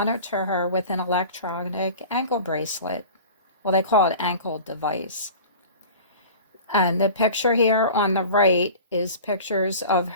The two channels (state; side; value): inverted; both; correlation -0.38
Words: her with an electronic ankle bracelet. Well, they call it ankle device. And the picture here on the right is pictures of